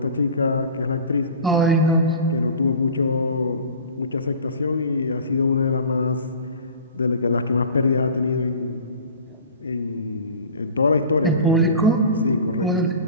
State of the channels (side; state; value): both; inverted; correlation -0.38